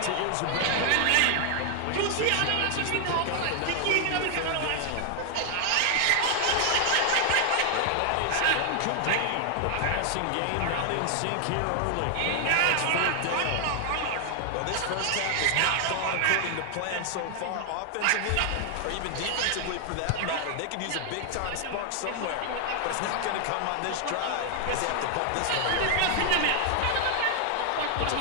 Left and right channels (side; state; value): both; different; correlation 0.00